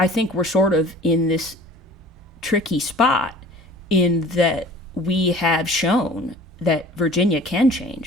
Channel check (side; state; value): both; normal; correlation 0.45